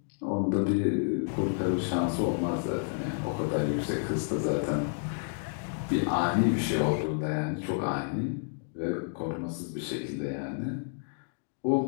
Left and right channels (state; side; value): silent; right; digital silence